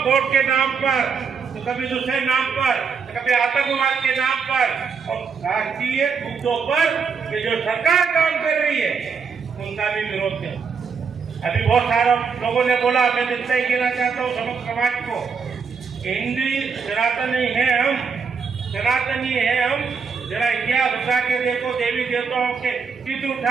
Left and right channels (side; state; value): left; quieter; 5.7 dB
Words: के नाम पर, तो कभी दूसरे नाम पर, तो कभी आतंकवाद के नाम पर, और राष्ट्रीय मुद्दों पर ये जो सरकार काम कर रही है उनका भी विरोध है। अभी बहुत सारे लोगों ने बोला, मैं जितना ही कहना चाहता हूँ समस्त समाज को, हिंदू सनातनी है हम, सनातनी है हम। जरा इतिहास उठा के देखो, देवी देवताओं के चित्र